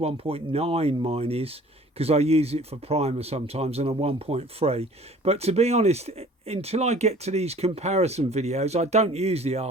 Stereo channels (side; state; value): both; normal; correlation 0.50